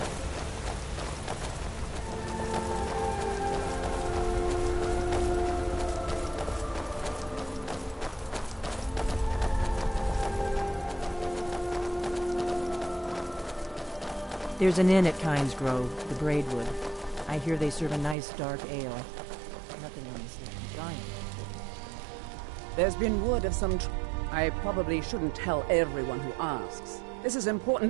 There's an inn at Kynes Grove, the Braidwood. I hear they serve a nice dark ale. Nothing on this giant. There's been word of some I probably shouldn't tell everyone who asks. This is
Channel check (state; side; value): drops out; left; at 18.2 s